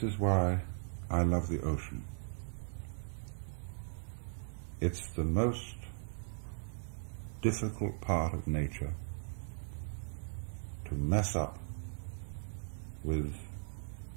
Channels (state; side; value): silent; left; digital silence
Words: is why I love the ocean. It's the most difficult part of nature to mess up with